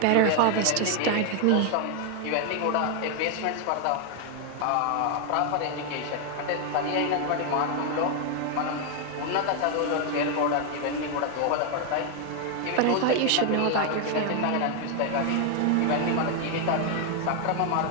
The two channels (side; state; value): both; different; correlation 0.00